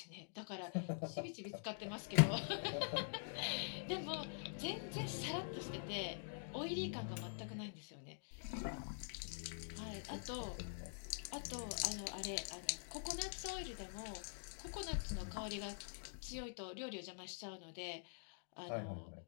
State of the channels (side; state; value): right; silent; digital silence